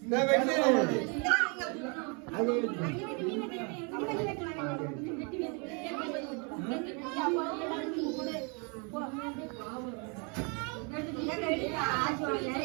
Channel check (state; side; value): quieter; left; 34.3 dB